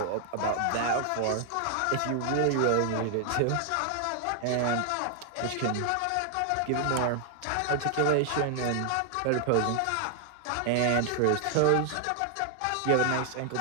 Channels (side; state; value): both; different; correlation 0.00